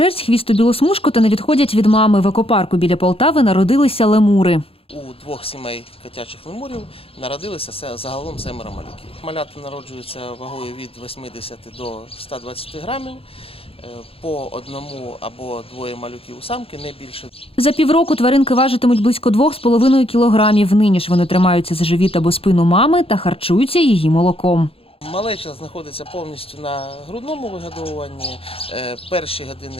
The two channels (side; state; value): right; late; 0.27 ms